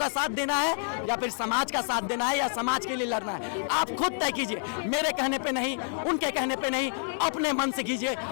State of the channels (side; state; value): right; silent; 59 dB below the other